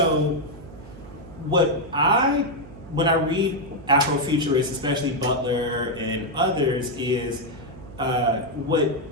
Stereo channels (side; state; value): right; noise; hum, 17 dB below the sound